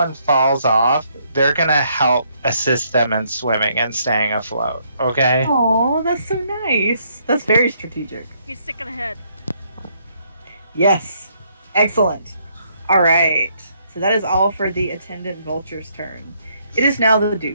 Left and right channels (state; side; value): inverted; both; correlation -0.71